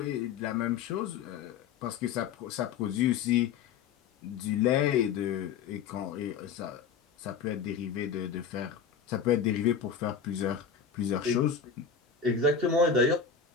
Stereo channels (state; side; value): quieter; right; 6.5 dB